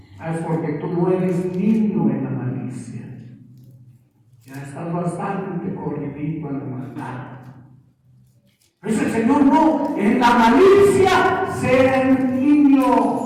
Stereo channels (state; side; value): identical; both; correlation 1.00